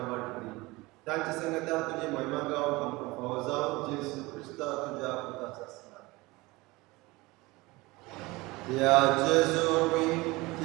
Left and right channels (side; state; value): left; quieter; 22.2 dB